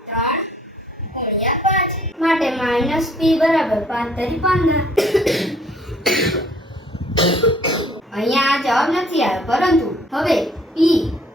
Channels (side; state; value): both; normal; correlation 0.59